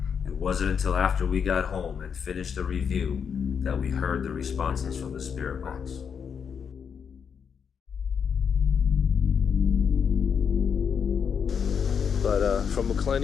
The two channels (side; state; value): right; quieter; 6.9 dB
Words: It wasn't until after we got home and finished the review that we heard the responses from the spirit box. But from